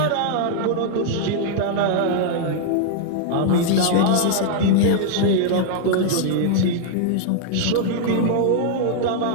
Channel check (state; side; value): different; both; correlation -0.01